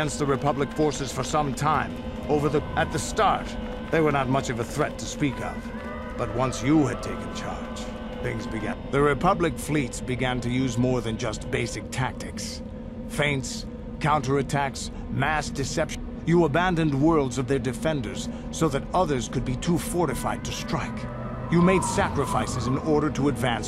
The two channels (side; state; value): both; identical; correlation 1.00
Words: the Republic forces for some time. At the start, they were not much of a threat to speak of. But once you had taken charge, things began. The Republic fleets began to use more than just basic tactics. Feints, counterattacks, mass deception. You abandoned worlds of their defenders so that others could be too fortified to strike. You made sacrifices in order to